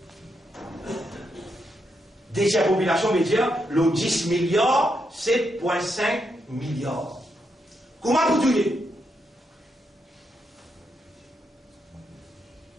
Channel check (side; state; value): both; normal; correlation 0.81